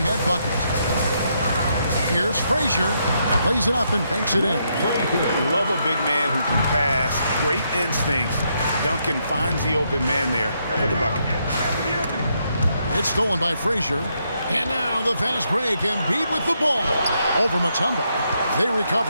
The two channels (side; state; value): both; inverted; correlation -0.77